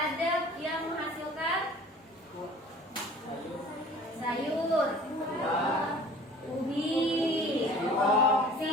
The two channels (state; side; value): normal; both; correlation 0.46